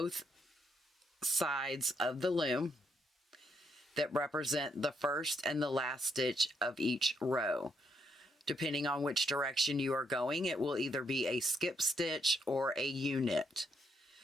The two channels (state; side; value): normal; both; correlation 0.76